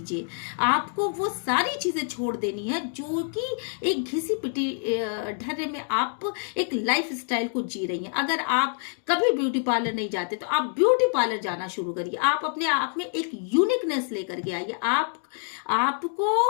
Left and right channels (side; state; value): right; silent; 61 dB below the other